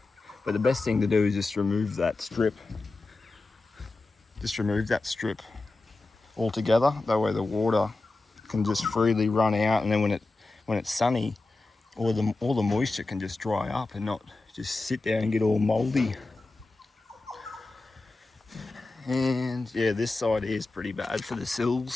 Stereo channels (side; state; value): right; quieter; 3.3 dB